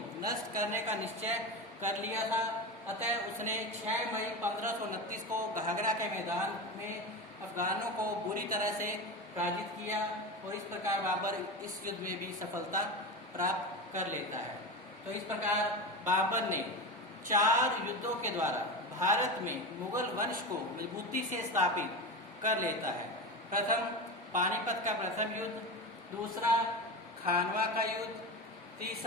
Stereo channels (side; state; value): both; normal; correlation 0.22